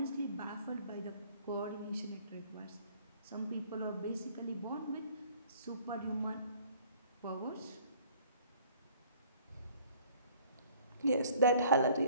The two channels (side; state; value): both; inverted; correlation -0.57